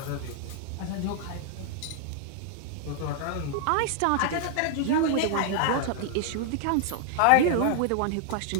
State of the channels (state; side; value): different; both; correlation -0.01